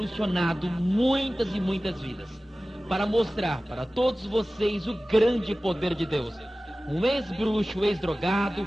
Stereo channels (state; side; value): normal; both; correlation 0.97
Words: muitas e muitas vidas, para mostrar para todos vocês o grande poder de Deus. Um ex-bruxo, ex-drogado,